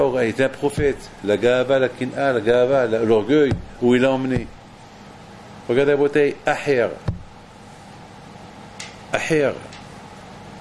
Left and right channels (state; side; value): identical; both; correlation 1.00